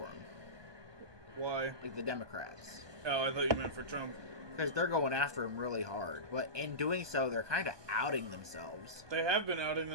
him. Why? Like the Democrats. Oh, I thought you meant for Trump. Because they're going after him really hard. But in doing so, they're kind of outing themselves. They have been outing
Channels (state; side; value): late; left; 1.2 ms